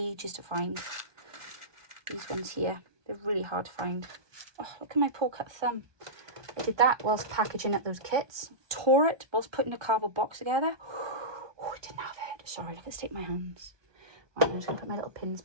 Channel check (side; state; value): left; late; 1.2 ms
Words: to find. These ones here. They're really hard to find. Oh, look at my poor cut thumb. I did that whilst packaging up those kits. Tore it whilst putting a cardboard box together. Oh, I didn't have it. Sorry, look at the state of my hands. Right, I'm just going to put my little pins